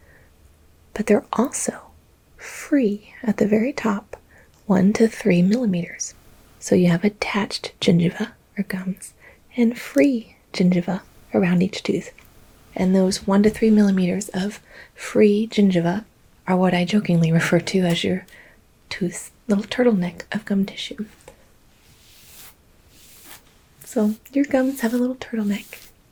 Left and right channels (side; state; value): both; identical; correlation 1.00